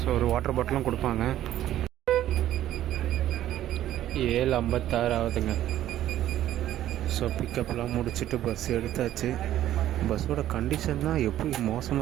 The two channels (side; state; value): left; quieter; 12.7 dB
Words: ஒரு வாட்டர் பாட்டிலும் கொடுப்பாங்க. 7:56 ஆகுதுங்க. ஸோ பிக்கப்லாம் முடிச்சுட்டு பஸ் எடுத்தாச்சு. பஸ்ஸோட கண்டிஷன் தான் எப்படி